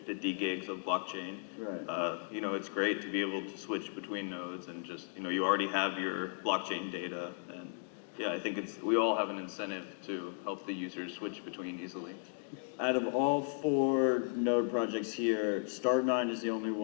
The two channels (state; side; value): silent; right; digital silence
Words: gigs of blockchain. Right. You know, it's great to be able to switch between nodes and just, you know, you already have your blockchain data. And yeah, I think we all have an incentive to help the users switch between easily. Out of all 4 node projects here, Start9 is the only